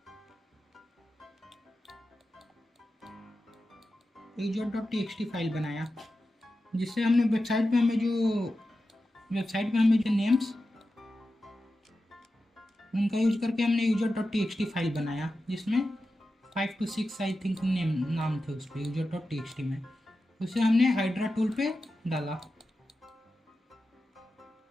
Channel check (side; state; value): both; normal; correlation 0.92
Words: user.txt फाइल बनाया, जिससे हमने वेबसाइट पे हमें जो नेम्स उनका यूज करके हमने user.txt फाइल बनाया, जिसमें 5 to 6 आई थिंक नाम थे उस पर user.txt में। उसे हमने हाइड्रा टूल पे डाला।